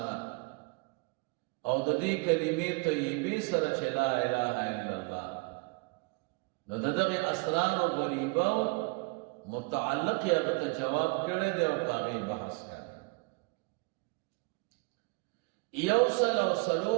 او دا دی کلمی طیبی سرا چھ لا الہ الا اللہ نو دا داغی اسرار غریبہ متعلق یا غتا جواب کرے دے او پاغی بحث کر یوصل او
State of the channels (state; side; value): quieter; left; 29.2 dB